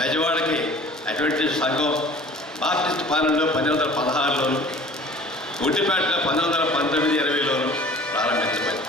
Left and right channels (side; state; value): both; normal; correlation 0.46